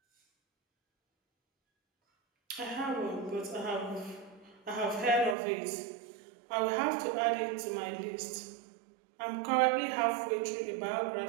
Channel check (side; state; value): left; drops out; at 5.4 s